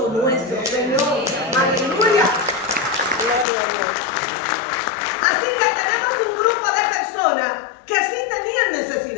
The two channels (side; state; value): right; drops out; at 3.5 s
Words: nuestro Señor. Aleluya. Gloria a Dios. Así que tenemos un grupo de personas que sí tenían